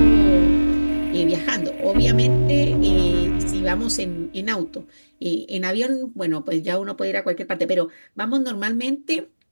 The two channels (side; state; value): both; inverted; correlation -1.00